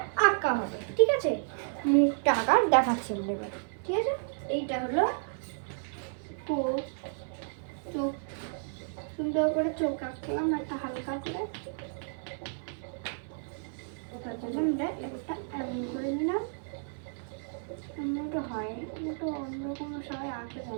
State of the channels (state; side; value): silent; left; digital silence